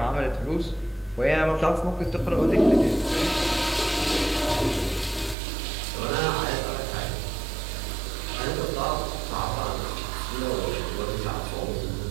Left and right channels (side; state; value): left; drops out; at 5.4 s